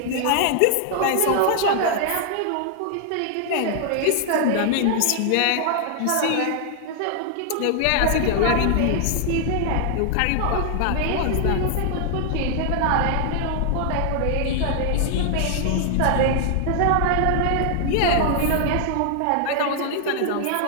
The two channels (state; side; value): different; both; correlation 0.00